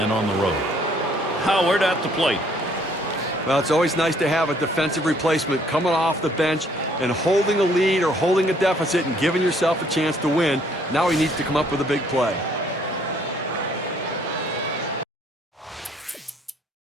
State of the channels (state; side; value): normal; both; correlation 0.63